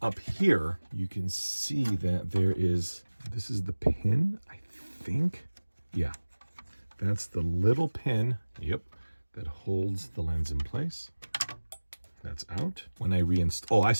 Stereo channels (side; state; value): both; inverted; correlation -1.00